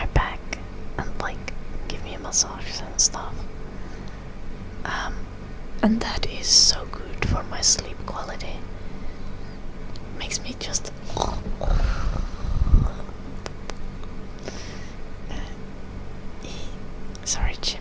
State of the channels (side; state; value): both; identical; correlation 1.00